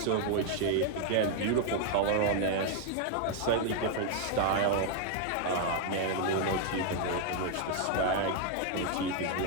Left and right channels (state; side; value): different; both; correlation 0.00